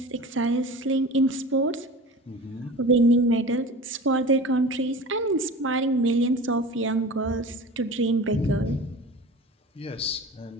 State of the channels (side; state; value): both; normal; correlation 0.36